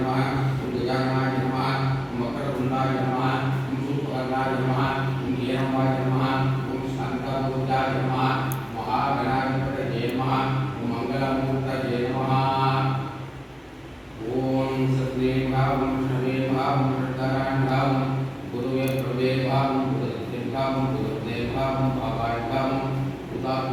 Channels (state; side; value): identical; both; correlation 1.00